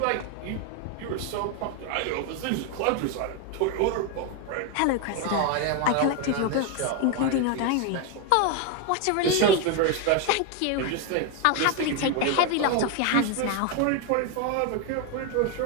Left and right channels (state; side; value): different; both; correlation 0.01